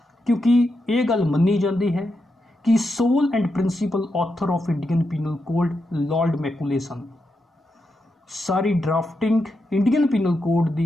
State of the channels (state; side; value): normal; both; correlation 0.85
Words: ਕਿਉਂਕਿ ਇਹ ਗੱਲ ਮੰਨੀ ਜਾਂਦੀ ਹੈ ਕਿ sole and principal author of Indian penal code lord Macaulay ਸਨ। ਸਾਰੀ ਡਰਾਫਟਿੰਗ ਇੰਡੀਅਨ ਪੀਨਲ ਕੋਡ